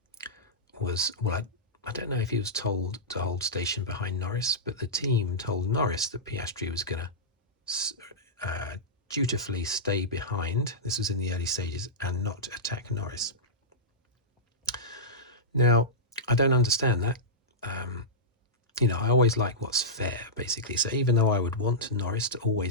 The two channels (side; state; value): both; normal; correlation -0.13